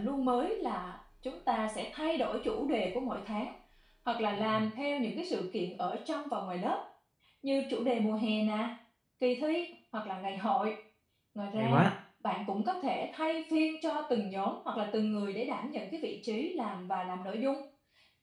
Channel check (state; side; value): identical; both; correlation 1.00